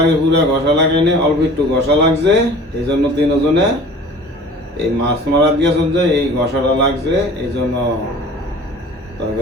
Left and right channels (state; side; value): normal; both; correlation 0.44